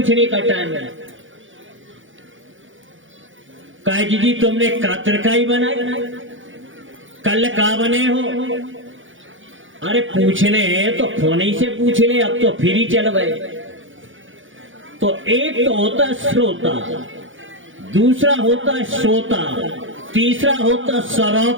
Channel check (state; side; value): late; left; 0.57 ms